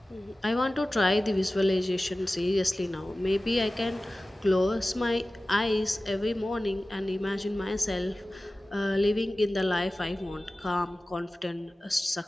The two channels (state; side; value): normal; both; correlation 0.96